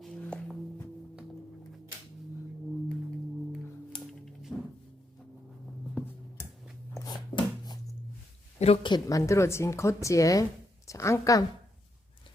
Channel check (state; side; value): normal; both; correlation 0.81